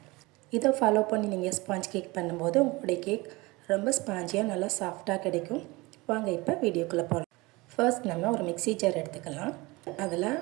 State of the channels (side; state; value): left; quieter; 23.1 dB